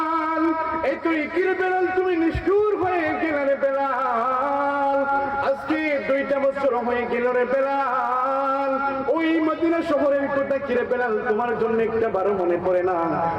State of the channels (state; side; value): identical; both; correlation 1.00